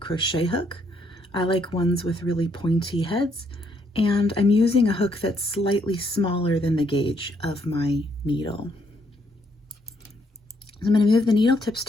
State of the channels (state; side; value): normal; both; correlation 0.72